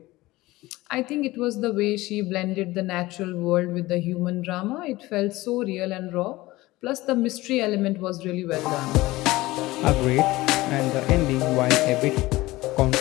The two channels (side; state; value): right; quieter; 19.0 dB